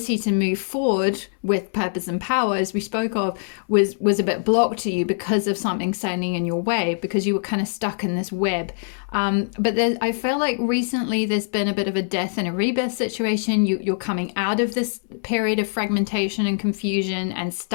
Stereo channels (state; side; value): silent; right; 63 dB below the other